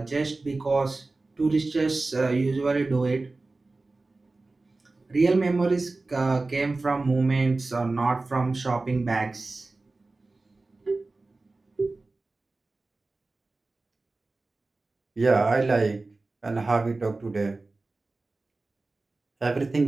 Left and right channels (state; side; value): quieter; left; 3.4 dB